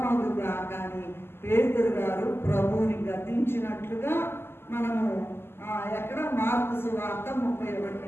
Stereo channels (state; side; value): late; right; 0.12 ms